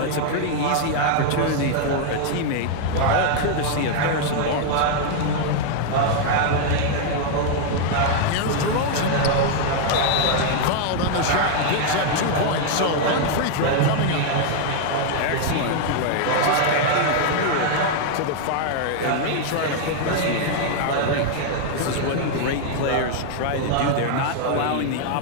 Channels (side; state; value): both; different; correlation 0.00